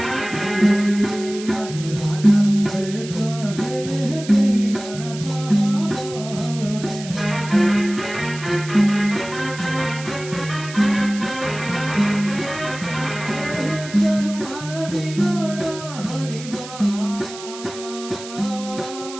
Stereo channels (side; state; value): right; noise; hiss, 14 dB below the sound